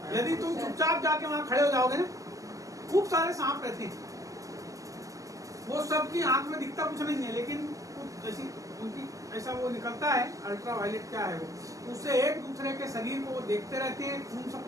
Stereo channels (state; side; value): late; left; 0.16 ms